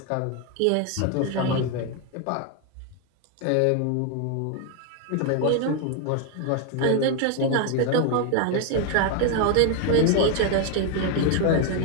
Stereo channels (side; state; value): both; different; correlation 0.01